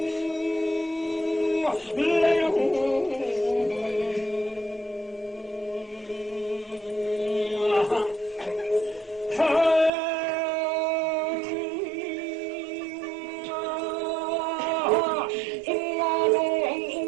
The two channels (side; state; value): left; drops out; at 9.9 s